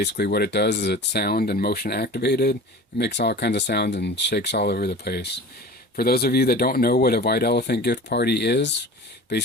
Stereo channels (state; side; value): normal; both; correlation 0.38